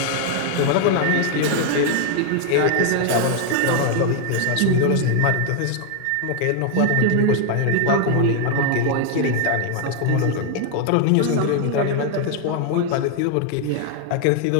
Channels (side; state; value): both; different; correlation 0.00